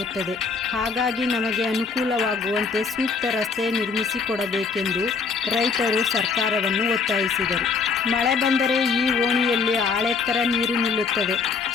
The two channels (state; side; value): quieter; right; 5.0 dB